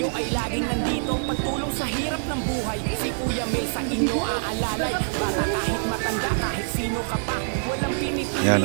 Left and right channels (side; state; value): left; silent; 62 dB below the other